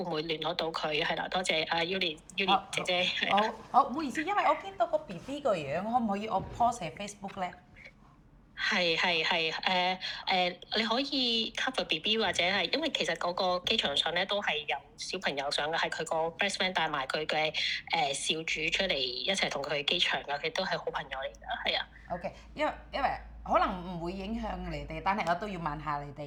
唔會聯絡到佢係啦，多謝阿 Yuli 姐姐。好，唔好意思，因為我見到個 BB 個樣，可唔可以我 post 喺 Facebook 咧？係你可以 cover BB 或者係，因為其實嗰個機場上咧都係有小朋友上嘅，係佢個 best friend 帶埋佢嘅少主出嚟一齊同佢去機場嘅，佢都係好朋友嚟㗎，係啊。OK， 因為可能唔會影響你哋，但係我都要問下你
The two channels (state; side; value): identical; both; correlation 1.00